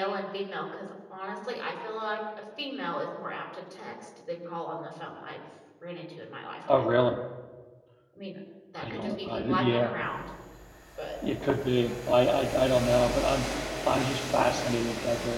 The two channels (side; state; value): both; identical; correlation 1.00